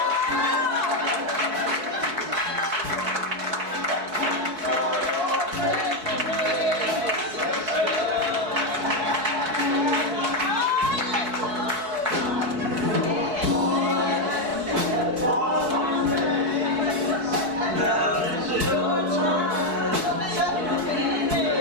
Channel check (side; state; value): left; late; 4.6 ms